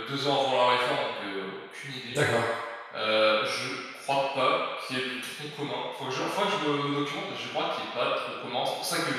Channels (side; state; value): both; identical; correlation 1.00